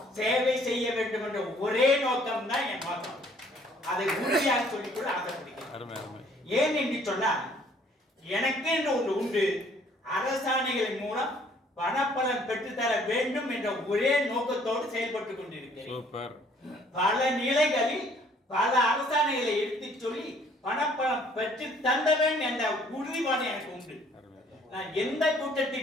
சேவை செய்ய வேண்டும் என்ற ஒரே நோக்கம் தான் என் நோக்கம். அதை உறுதியாக சொல்லிக்கொள்ள ஆசைப்படுகிறேன். ஏன் என்று சொன்னால், எனக்கு என்று ஒன்று உண்டு. அரசாணைகளின் மூலம் பணப்பலன் பெற்றுத்தர வேண்டும் என்ற ஒரே நோக்கத்தோடு செயல்பட்டுக் கொண்டிருக்கிறேன். பல நிலைகளில் பல அரசாணைகளை எடுத்து சொல்லி பணப்பலம் பெற்று தந்தவன் என்ற உறுதிப்பாடு எனக்கு உண்டு. நான் எந்த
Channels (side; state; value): both; normal; correlation 0.60